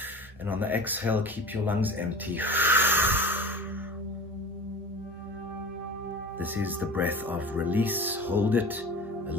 And on the exhale, keep your lungs empty. This is the breath of release. Hold it a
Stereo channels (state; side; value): normal; both; correlation 0.37